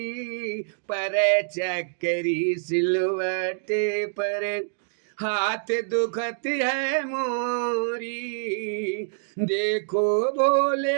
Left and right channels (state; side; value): silent; left; digital silence